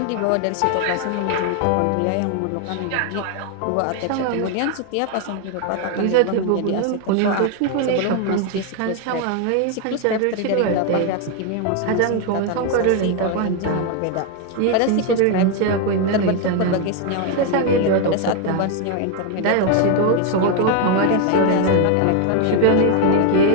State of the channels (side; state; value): both; different; correlation 0.01